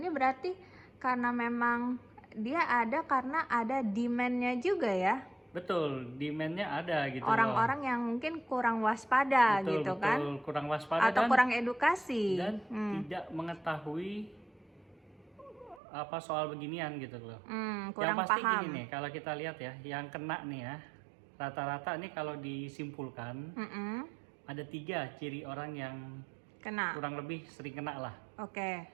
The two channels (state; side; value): drops out; left; at 15.8 s